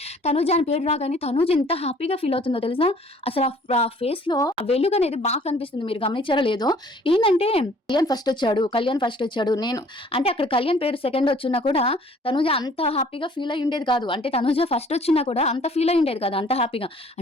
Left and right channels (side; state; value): both; normal; correlation 0.55